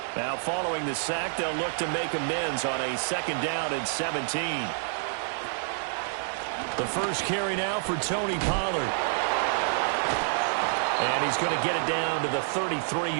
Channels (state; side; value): silent; left; digital silence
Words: Now following the sack, they'll look to make amends on a 2nd down and 17. The first carry now for Tony Pollard. And he's going to get it down to the